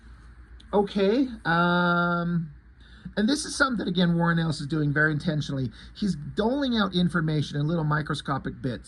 Okay. And this is something that, again, Warren Ellis is doing very intentionally. He's doling out information in little microscopic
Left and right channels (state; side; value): identical; both; correlation 1.00